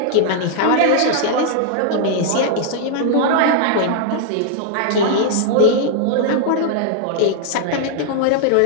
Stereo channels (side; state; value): both; different; correlation -0.01